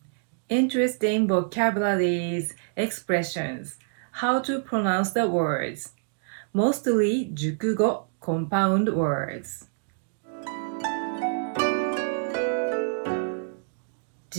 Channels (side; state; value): left; silent; digital silence